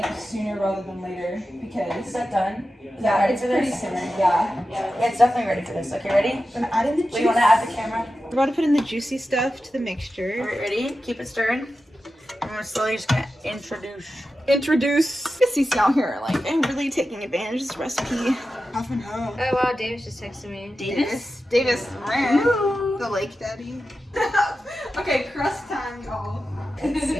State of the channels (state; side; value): normal; both; correlation 0.92